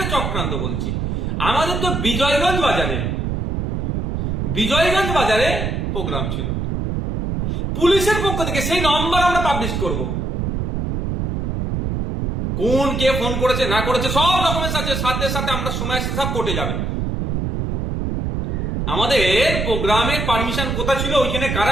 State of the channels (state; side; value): noise; right; rumble, 1 dB below the sound